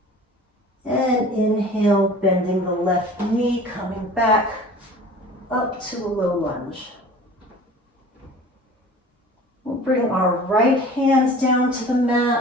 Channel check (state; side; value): normal; both; correlation 0.43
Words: And inhale, bending the left knee, coming back up to a low lunge. We'll bring our right hands down to the